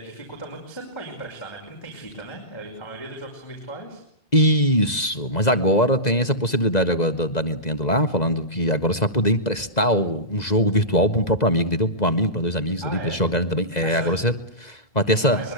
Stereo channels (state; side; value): late; right; 2.0 ms